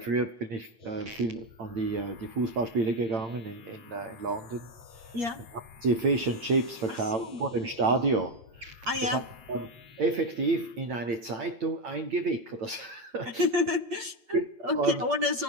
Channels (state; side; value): late; left; 8.9 ms